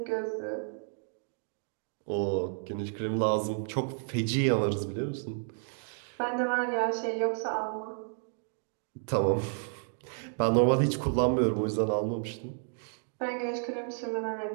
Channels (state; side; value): silent; left; 57 dB below the other